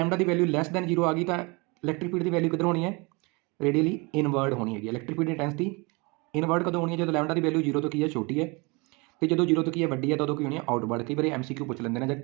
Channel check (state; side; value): quieter; left; 28.2 dB